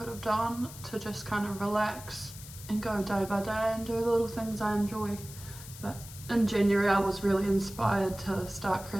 have done to just kind of relax and go day by day and do the little things I enjoy. But in January I was really inspired to start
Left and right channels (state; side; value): noise; left; hiss, 15 dB below the sound